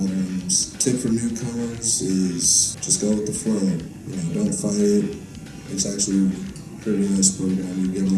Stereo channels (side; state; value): both; identical; correlation 1.00